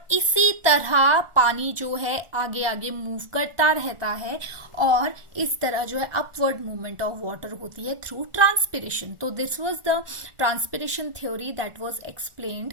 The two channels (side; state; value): left; late; 1.4 ms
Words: इसी तरह पानी जो है आगे आगे मूव करता रहता है, और इस तरह जो है अपवर्ड मूवमेंट ऑफ वाटर होती है थ्रू ट्रांसपिरेशन। तो this was the transpiration theory that was